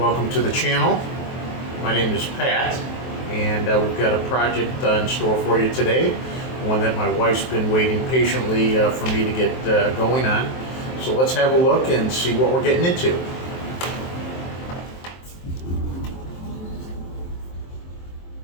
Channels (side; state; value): right; late; 23 ms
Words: to the channel. My name is Pat, and we've got a project in store for you today, one that my wife's been waiting patiently for me to get going on. So let's have a look and see what we're getting into.